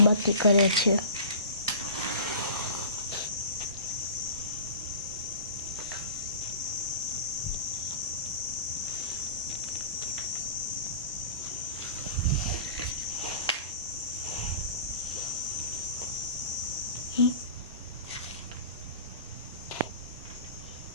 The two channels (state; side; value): inverted; both; correlation -0.38